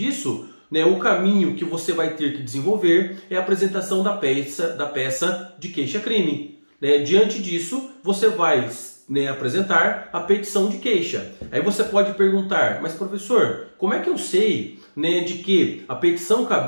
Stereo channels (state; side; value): inverted; both; correlation -1.00